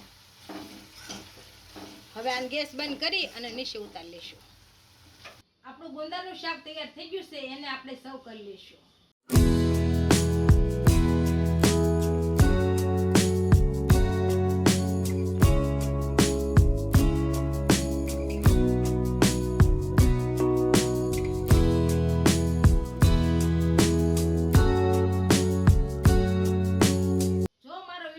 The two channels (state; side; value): identical; both; correlation 1.00